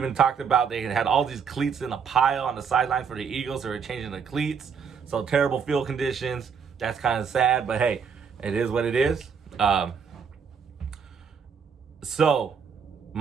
talked about they had all these cleats in a pile on the sideline for the Eagles. They were changing the cleats. So terrible field conditions. That's kind of sad, but hey, it is what it is. So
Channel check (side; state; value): left; quieter; 6.5 dB